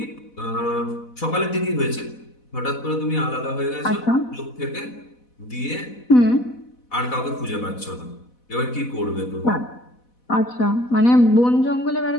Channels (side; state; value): right; late; 4.1 ms